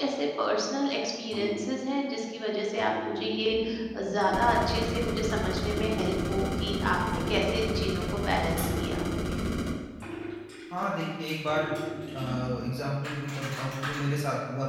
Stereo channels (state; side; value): identical; both; correlation 1.00